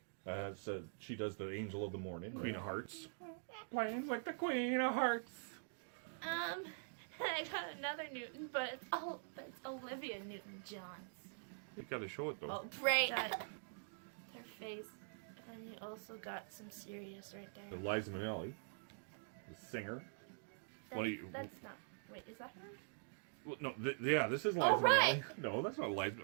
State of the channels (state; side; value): silent; left; digital silence